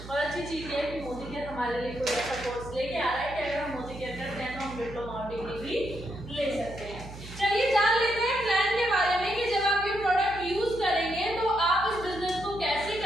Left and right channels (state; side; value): noise; right; hum, 13 dB below the sound